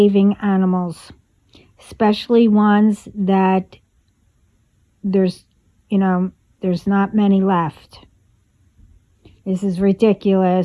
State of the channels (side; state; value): both; identical; correlation 1.00